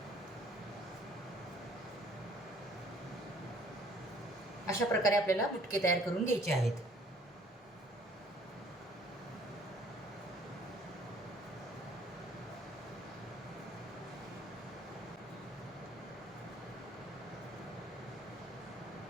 अशा प्रकारे आपल्याला मुटके तयार करून घ्यायचे आहेत.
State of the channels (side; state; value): both; normal; correlation 0.57